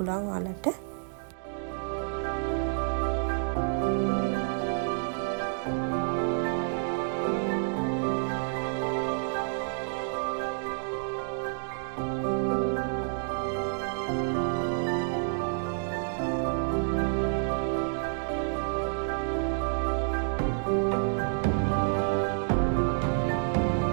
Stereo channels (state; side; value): silent; left; digital silence